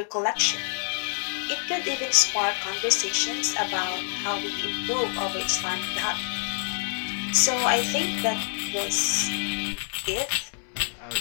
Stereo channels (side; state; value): right; silent; 60 dB below the other